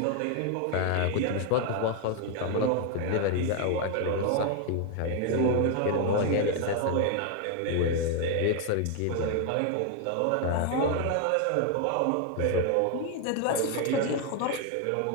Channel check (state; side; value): different; both; correlation 0.01